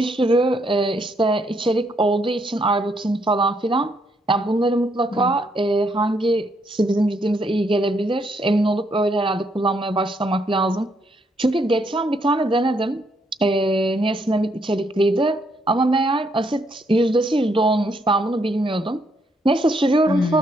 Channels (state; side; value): normal; both; correlation 0.74